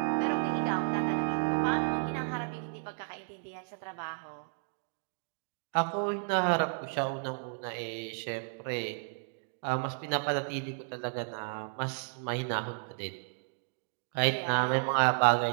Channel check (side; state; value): left; silent; digital silence